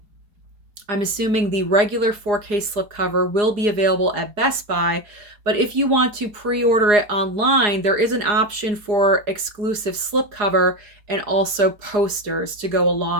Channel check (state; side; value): late; left; 4.8 ms